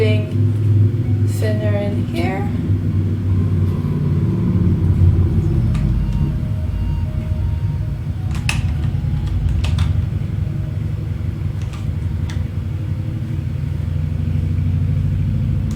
thinner in here.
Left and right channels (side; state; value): both; identical; correlation 1.00